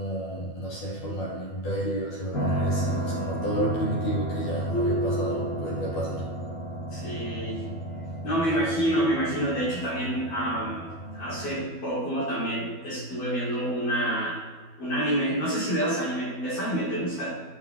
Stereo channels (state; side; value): late; right; 12 ms